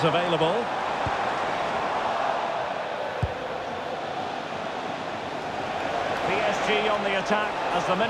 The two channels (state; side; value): identical; both; correlation 1.00